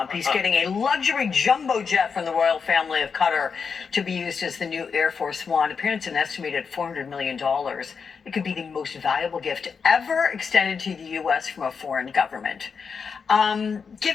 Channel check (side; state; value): right; quieter; 5.8 dB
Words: He's getting a luxury jumbo jet from the royal family of Qatar to be used as the new Air Force One. Apparently, it's an estimated $400 million. It could be the most valuable gift ever extended to the U.S. from a foreign government.